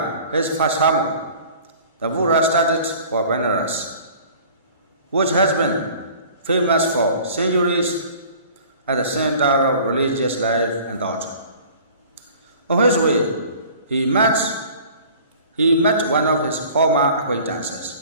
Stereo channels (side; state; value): both; inverted; correlation -0.47